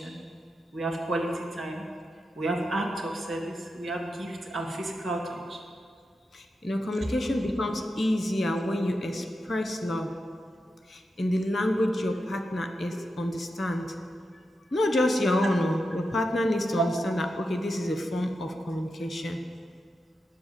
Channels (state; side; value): normal; both; correlation 0.88